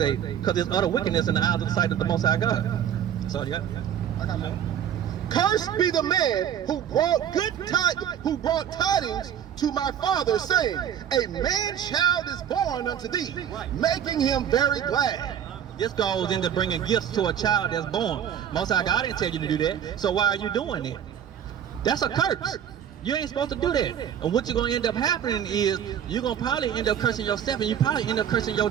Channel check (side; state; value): left; quieter; 9.4 dB